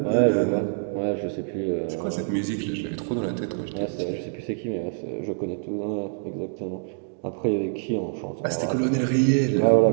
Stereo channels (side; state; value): left; silent; digital silence